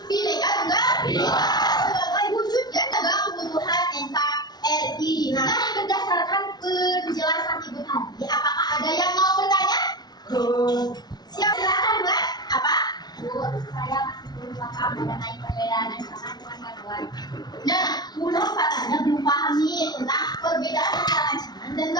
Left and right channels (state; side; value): late; right; 0.19 ms